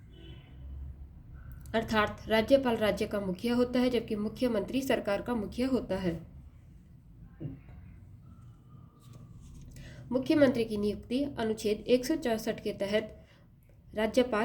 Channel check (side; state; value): both; identical; correlation 1.00